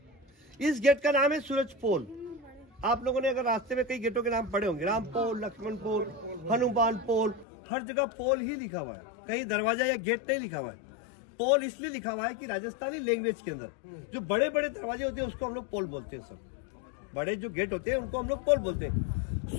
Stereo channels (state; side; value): drops out; right; at 7.5 s